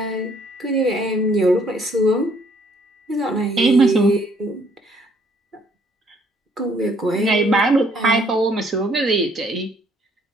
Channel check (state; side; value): normal; both; correlation 0.64